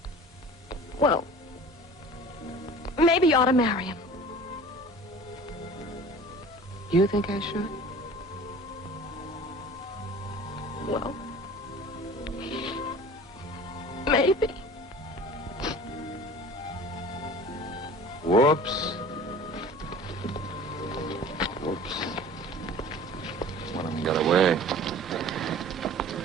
Well, maybe you ought to marry him. You think I should? Well, maybe. Whoops. Whoops. One of them got away.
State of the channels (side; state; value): both; normal; correlation 0.43